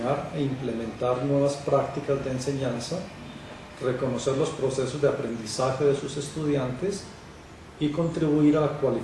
e implementar nuevas prácticas de enseñanza, reconocer los procesos de aprendizaje de sus estudiantes y contribuir a la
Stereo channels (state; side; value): identical; both; correlation 1.00